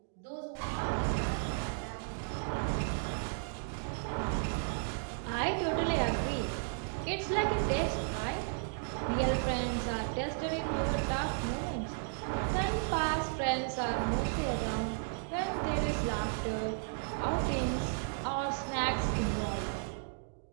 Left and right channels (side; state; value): left; silent; digital silence